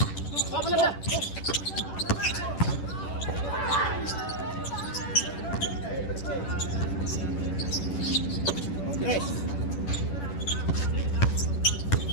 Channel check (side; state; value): right; late; 10 ms